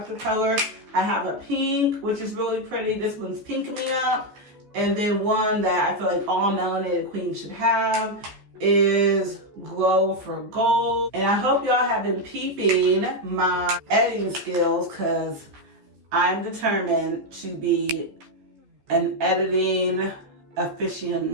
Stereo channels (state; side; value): late; left; 14 ms